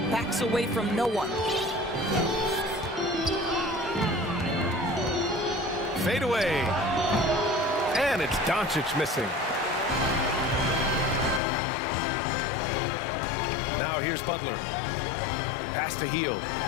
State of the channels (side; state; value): right; drops out; at 11.4 s